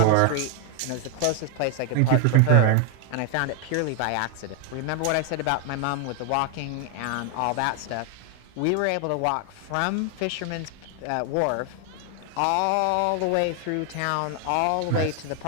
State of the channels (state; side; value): different; both; correlation 0.00